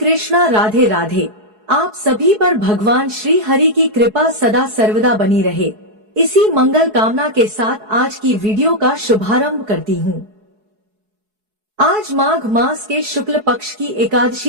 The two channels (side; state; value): left; late; 4.7 ms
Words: राधे राधे। आप सभी पर भगवान श्री हरि की कृपा सदा सर्वदा बनी रहे, इसी मंगल कामना के साथ आज की वीडियो का शुभारंभ करती हूँ। आज माघ मास के शुक्ल पक्ष की